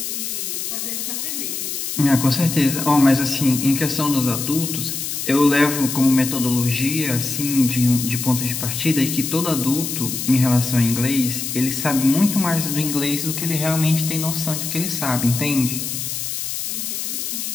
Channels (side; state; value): left; noise; hiss, 4 dB below the sound